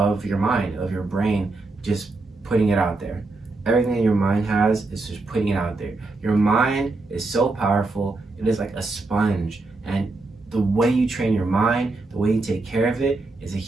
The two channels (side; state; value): left; quieter; 3.4 dB